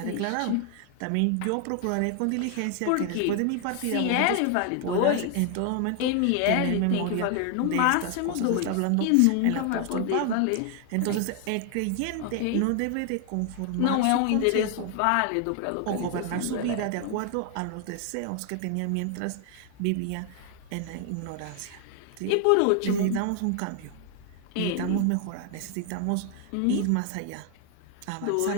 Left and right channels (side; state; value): both; different; correlation 0.00